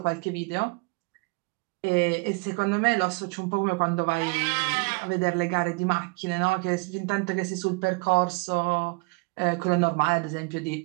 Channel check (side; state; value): left; quieter; 29.0 dB